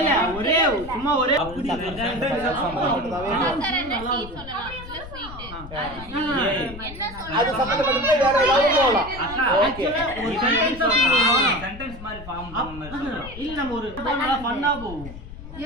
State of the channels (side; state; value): left; noise; rumble, 13 dB below the sound